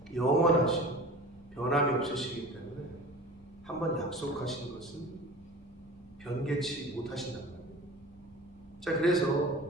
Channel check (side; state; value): both; normal; correlation 0.39